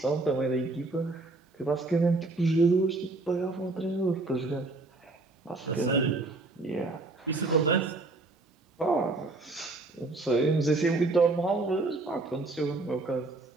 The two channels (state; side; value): quieter; left; 3.2 dB